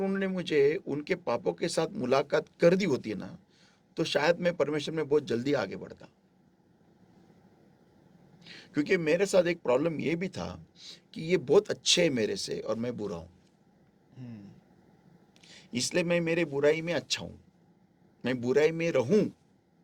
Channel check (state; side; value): identical; both; correlation 1.00